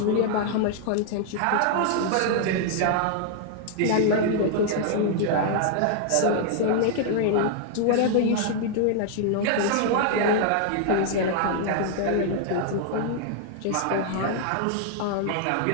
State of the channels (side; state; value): both; different; correlation 0.00